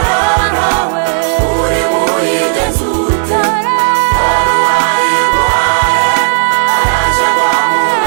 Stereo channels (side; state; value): left; silent; digital silence